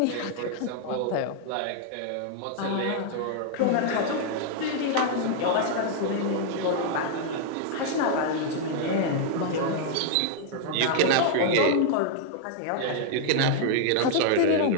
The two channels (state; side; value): different; both; correlation -0.01